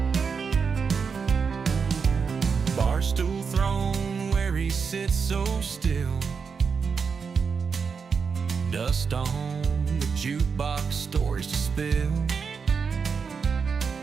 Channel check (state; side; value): quieter; left; 5.7 dB